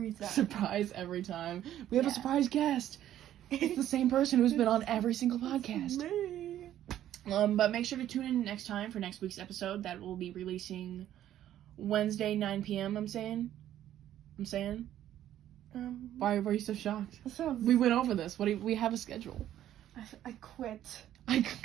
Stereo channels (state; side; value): quieter; left; 11.9 dB